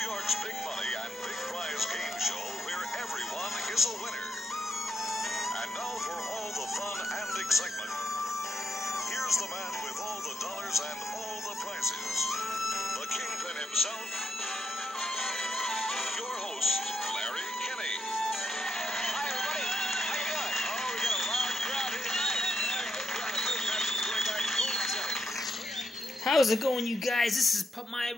York's big money and big prize game show where everyone is a winner. And now for all the fun and excitement, here's the man with all the dollars and all the prizes, the kingpin himself, your host, Larry Kinney. Hi, everybody. How you doing? Oh, we got a loud crowd here tonight. How's it going, you guys? This is my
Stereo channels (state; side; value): normal; both; correlation 0.79